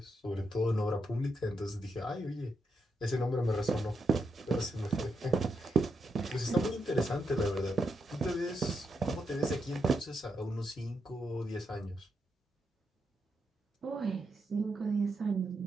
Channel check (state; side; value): normal; both; correlation 0.83